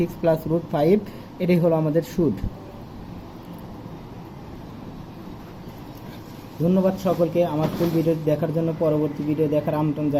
প্লাস √5 এটাই হলো আমাদের সুদ। ধন্যবাদ সকলকে আমার ফুল ভিডিও দেখার জন্য। পরবর্তী ভিডিও দেখার আমন্ত্রণ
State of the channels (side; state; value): both; identical; correlation 1.00